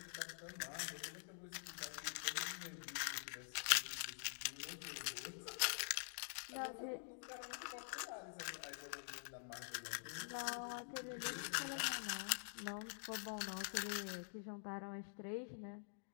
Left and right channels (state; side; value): silent; right; digital silence